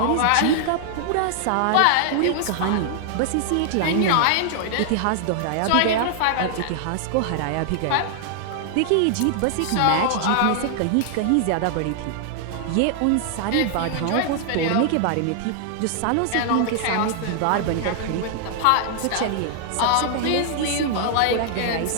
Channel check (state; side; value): different; both; correlation -0.01